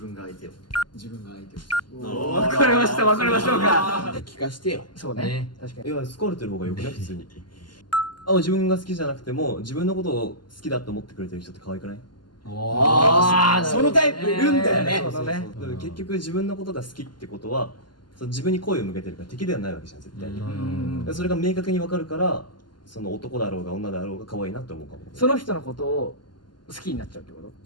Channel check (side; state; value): right; late; 0.71 ms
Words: が相手を。自分が相手を。わかりましたわかりましょうか。聞かしてよ。そうね、確かに。いや好かれてる方がよくない普通に。自分が好きじゃなくても自分のことを好きだと思ってくれてる人って可愛くない？ああ、そのタイプいるんだよね。そうね。でも結局自分のことが好きってことは自分に好意を向けてるから敵ではないわけじゃん絶対に。それが明確に分かるからその男だろうが女だろうが可愛いなって思うかも。その人のことを好きになっちゃうってこと？